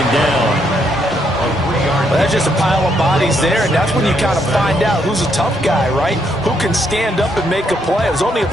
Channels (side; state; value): both; normal; correlation 0.74